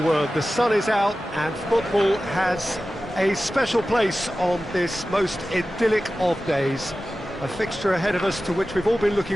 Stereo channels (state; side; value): normal; both; correlation 0.95